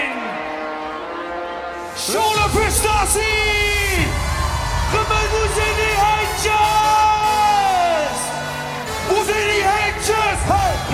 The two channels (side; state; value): both; identical; correlation 1.00